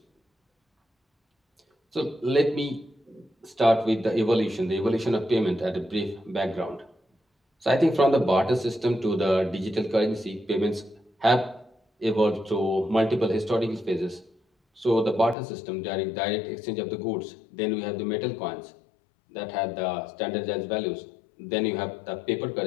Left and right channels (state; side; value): drops out; right; at 15.4 s